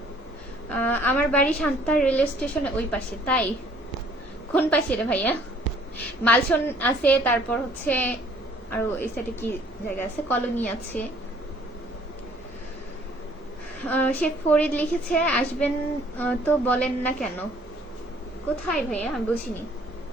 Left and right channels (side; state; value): both; normal; correlation 0.58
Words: আমার বাড়ি শান্তা রেলওয়ে স্টেশনে ওই পাশে। তাই কোন পাশে রে ভাইয়া? মালসন আছে, তারপর হচ্ছে আরো এই সাইডে কি জায়গা আছে, কলোনি আছে। শেখ ফরিদ লিখেছে আসবেন তো বলেন না কেন? কোথায় ভাইয়া আমি বুঝিনি।